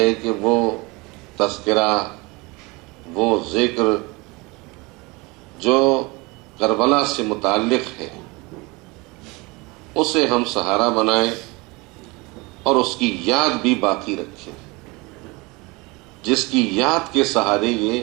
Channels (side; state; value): left; quieter; 25.5 dB